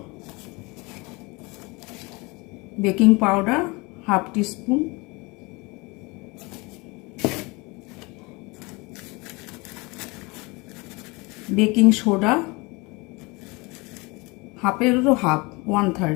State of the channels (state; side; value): quieter; right; 25.9 dB